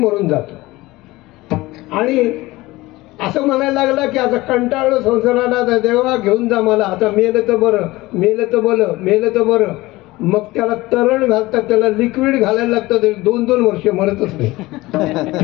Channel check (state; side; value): quieter; right; 19.6 dB